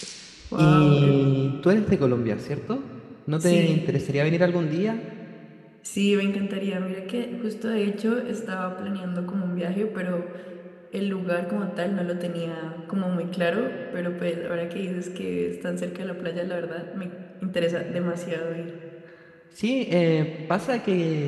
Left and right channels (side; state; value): both; identical; correlation 1.00